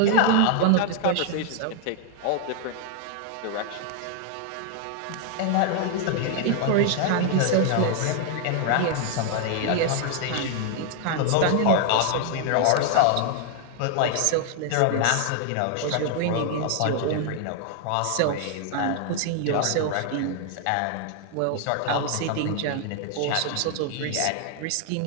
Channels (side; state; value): both; different; correlation 0.00